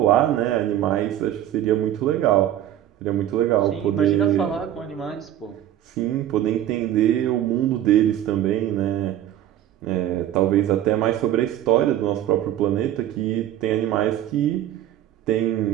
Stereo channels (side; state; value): left; quieter; 12.0 dB